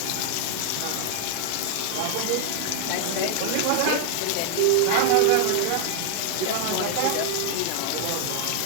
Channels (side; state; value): both; different; correlation 0.00